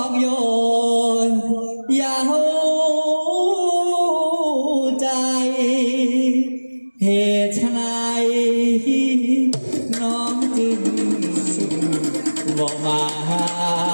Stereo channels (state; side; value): inverted; both; correlation -1.00